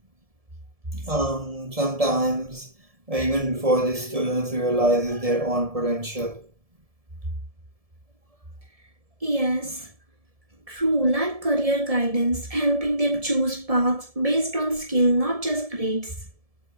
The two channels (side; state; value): left; late; 1.7 ms